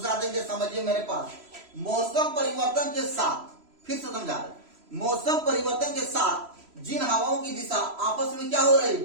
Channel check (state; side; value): late; left; 3.0 ms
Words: देंगे, समझिए मेरे पास। मौसम परिवर्तन के साथ, फिर से समझा रहे, मौसम परिवर्तन के साथ जिन हवाओं की दिशा आपस में क्या हो रही